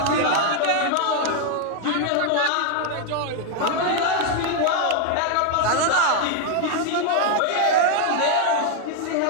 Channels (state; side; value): different; both; correlation 0.01